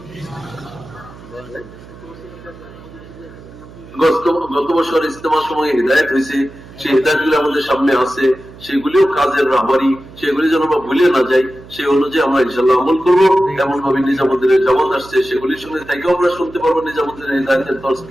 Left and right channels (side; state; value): right; noise; hum, 19 dB below the sound